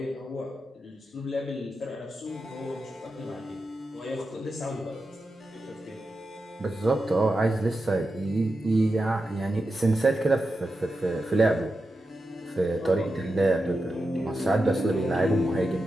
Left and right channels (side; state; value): both; normal; correlation 0.90